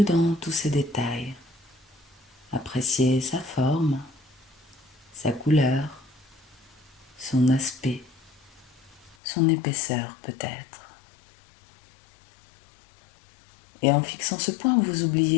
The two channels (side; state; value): right; drops out; at 9.2 s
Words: dans tous ses détails. Appréciez sa forme, sa couleur, son aspect, son épaisseur peut-être. Et en fixant ce point, vous